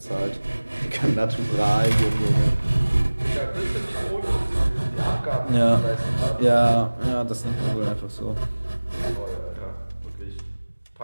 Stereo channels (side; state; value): both; inverted; correlation -1.00